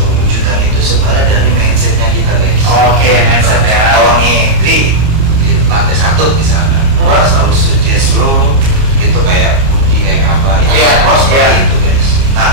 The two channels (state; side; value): late; left; 29 ms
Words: itu sebenarnya dari mindsetnya kita guys. Oke, mindset ya. Kalau nih, Tri, di lantai 1 misalnya, gua selalu suggest lo itu kayak kunci kayak apa, Iya, gua seperti iya. itu guys. Nah,